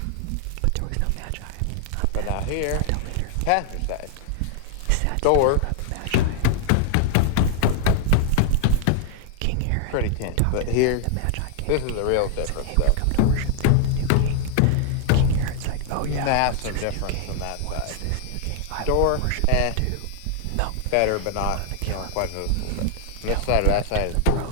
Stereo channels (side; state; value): both; different; correlation 0.00